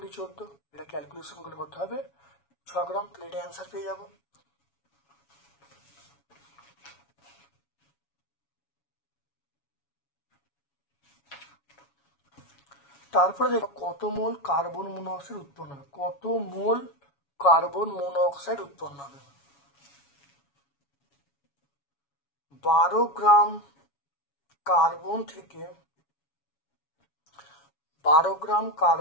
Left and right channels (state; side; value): late; right; 7.1 ms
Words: 14, এটা ক্যালকুলেশন করলে কত হবে 6 গ্রাম, তাহলে এটা অ্যান্সার পেয়ে যাবো। তারপরে দেখো কত মোল কার্বন মনোক্সাইড উৎপন্ন হবে, কত মোল কার্বন মনোক্সাইড উৎপন্ন হবে। 12 গ্রাম কার্বন থেকে 12 গ্রাম